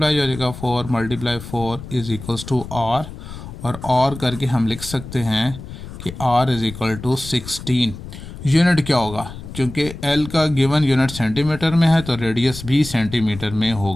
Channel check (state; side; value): noise; left; rumble, 12 dB below the sound